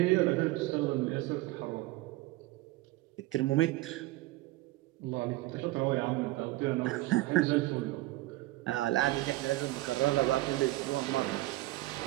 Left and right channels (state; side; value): quieter; left; 18.5 dB